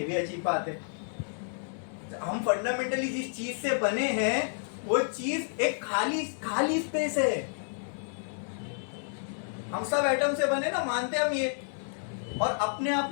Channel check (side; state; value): right; silent; digital silence